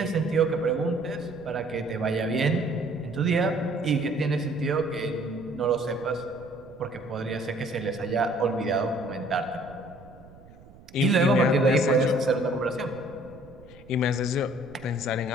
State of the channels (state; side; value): noise; right; rumble, 22 dB below the sound